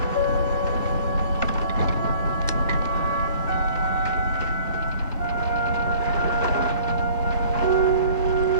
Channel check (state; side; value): inverted; both; correlation -0.53